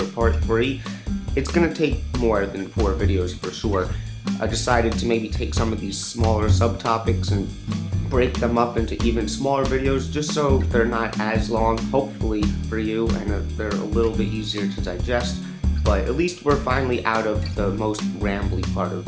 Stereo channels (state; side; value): identical; both; correlation 1.00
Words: part 3. It's going to take more than 4 videos for sure. I decided to maybe take some of these smaller subtopics and break them up into even smaller videos just so they're not as long, hopefully, for you, and they're a little bit easier to digest. But at least we're finally out of the most rambly part of